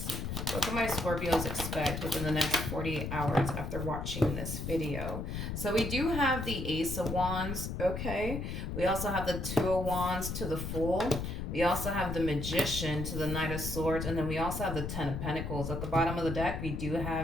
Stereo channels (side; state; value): left; noise; rumble, 4 dB below the sound